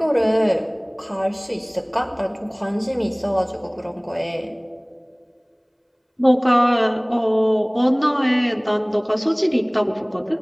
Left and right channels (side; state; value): both; identical; correlation 1.00